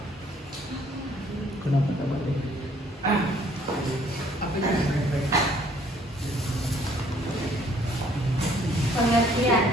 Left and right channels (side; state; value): both; normal; correlation 0.61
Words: kenapa tak boleh? Pengertian.